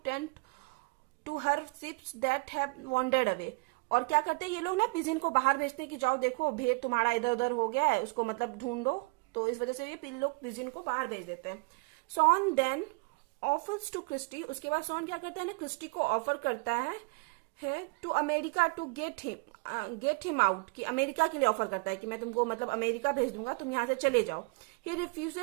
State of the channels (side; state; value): left; quieter; 28.5 dB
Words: to her sheeps that have wandered away, और क्या करते हैं ये लोग ना, पिजिन को बाहर भेजते हैं कि जाओ देखो भेड़ तुम्हारा इधर उधर हो गया है, उसको मतलब ढूंढो, तो इस वजह से ये लोग पिजिन को बाहर भेज देते हैं। Shawn then offers to Christy, उसके बाद सॉन क्या करता है ना, क्रिस्टी को ऑफर करता है to America to get him out, कि अमेरिका के लिए ऑफर करता है कि मैं तुमको मतलब अमेरिका भेज दूंगा, तुम यहाँ से चले जाओ। ही